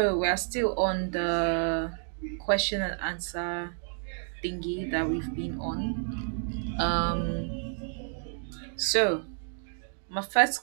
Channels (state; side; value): silent; left; 55 dB below the other